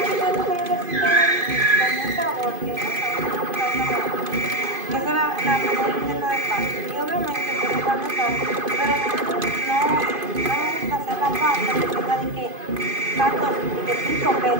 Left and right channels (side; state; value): left; late; 2.5 ms